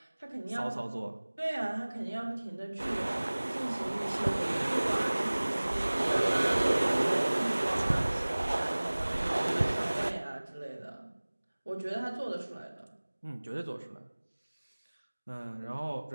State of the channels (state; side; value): inverted; both; correlation -1.00